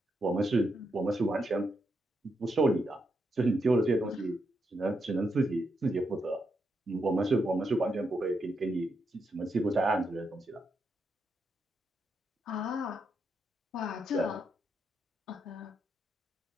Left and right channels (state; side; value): normal; both; correlation 0.82